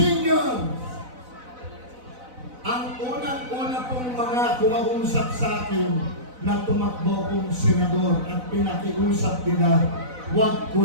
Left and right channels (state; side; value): late; left; 4.0 ms